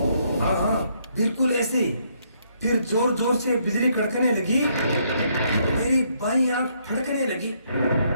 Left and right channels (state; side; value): inverted; both; correlation -0.72